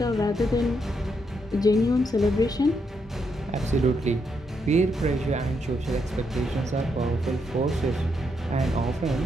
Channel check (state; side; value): normal; both; correlation 0.79